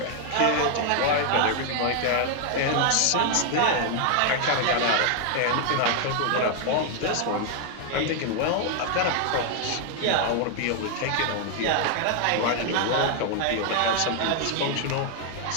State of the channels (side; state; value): both; different; correlation 0.00